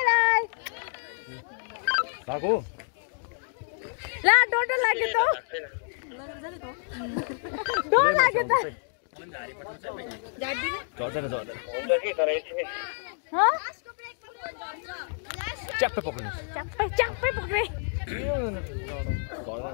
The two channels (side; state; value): right; silent; 59 dB below the other